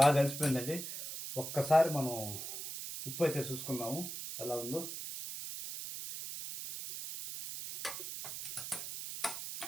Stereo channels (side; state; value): right; noise; hiss, 7 dB below the sound